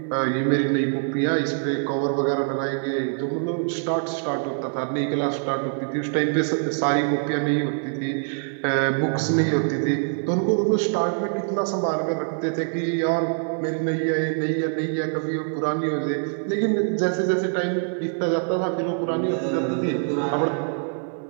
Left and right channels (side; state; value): left; silent; 62 dB below the other